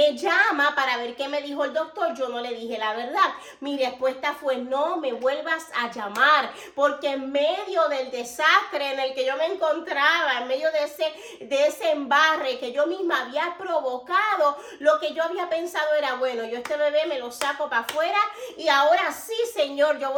llama para ver qué me dijo el doctor. Yo no le dije la verdad. Mi respuesta fue: no me vuelvas a llamar, porque en medio del desastre en el que yo me encontraba, en medio de ese embarre que yo misma había provocado, lo que yo había pensado era: bueno, yo este bebé me lo saco para afuera, y ahora sí, Señor, yo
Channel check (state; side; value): identical; both; correlation 1.00